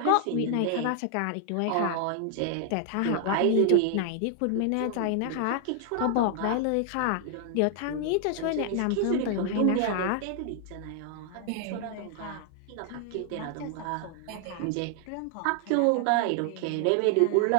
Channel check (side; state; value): both; different; correlation 0.00